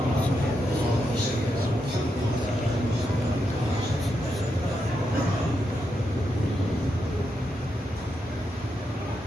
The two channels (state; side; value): normal; both; correlation 0.84